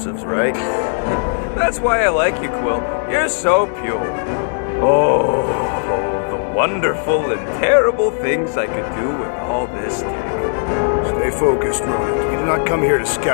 right? That's why I like you, Quill. You're so pure. Oh, the wonderful and terrible things I could do with all this tech. Stay focused, rodent. We do not come here to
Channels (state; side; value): silent; right; 61 dB below the other